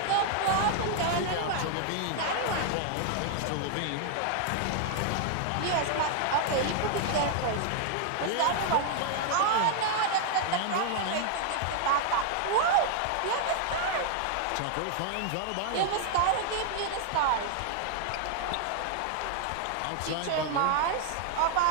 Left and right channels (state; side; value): different; both; correlation 0.00